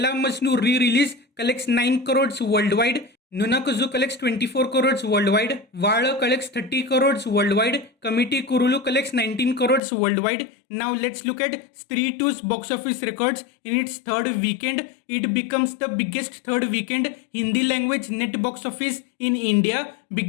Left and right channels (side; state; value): right; drops out; at 9.8 s